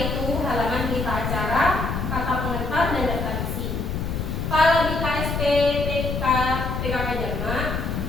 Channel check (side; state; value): left; noise; rumble, 2 dB below the sound